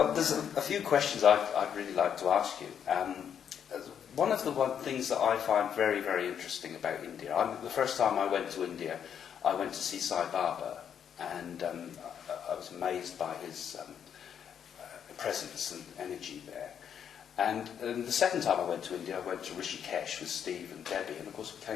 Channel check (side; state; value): right; quieter; 8.4 dB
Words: there's a few questions I'd really like to ask you. One of the things that I find very, very interesting about India, the first time I went to India, I went to see Sai Baba, and I was amazed by his presence and energy there. And the second time I went to India, I went to Rishikesh with Steve and Debbie, and of course we